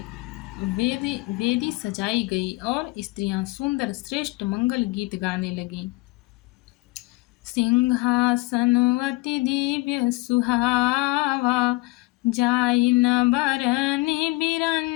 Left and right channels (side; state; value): right; quieter; 22.8 dB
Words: वेदी सजाई गई और स्त्रियां सुंदर श्रेष्ठ मंगल गीत गाने लगीं। सिंहासन अति दिव्य सुहावा, जाई न बरनि